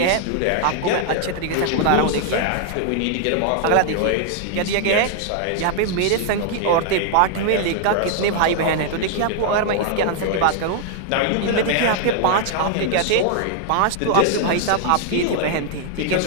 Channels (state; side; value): different; both; correlation 0.00